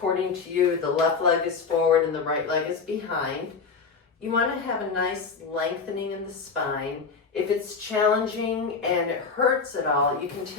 to you, the left leg is forward and the right leg is behind, you want to have a nice lengthening in the spine. If it's challenging and it hurts at all, you can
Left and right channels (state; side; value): quieter; right; 5.1 dB